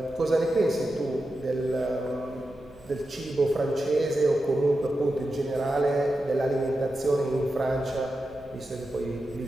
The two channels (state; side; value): noise; right; rumble, 25 dB below the sound